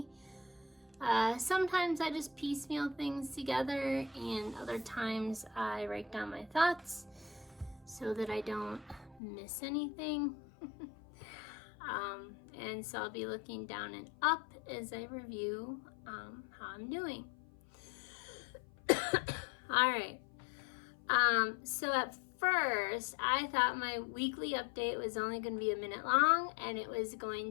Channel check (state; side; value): drops out; right; at 9.2 s